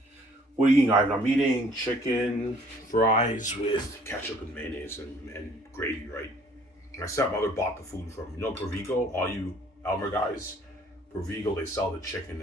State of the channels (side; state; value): both; normal; correlation 0.58